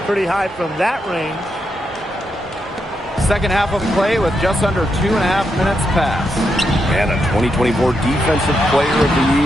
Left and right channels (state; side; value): normal; both; correlation 0.83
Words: pretty high from that range. Second half of play with just under 2.5 minutes passed. And a 2024 Defensive Player of the